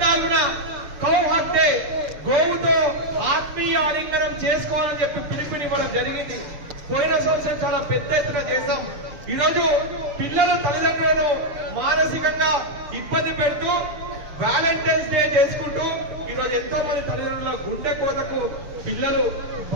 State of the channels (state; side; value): late; left; 7.0 ms